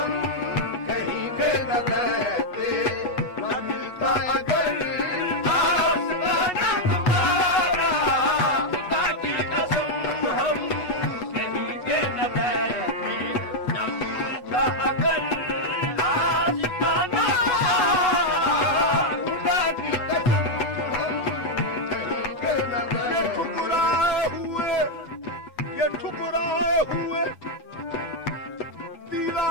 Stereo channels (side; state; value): right; late; 8.1 ms